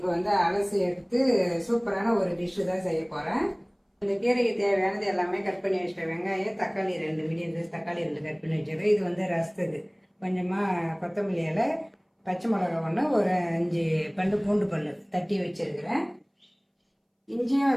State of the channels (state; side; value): identical; both; correlation 1.00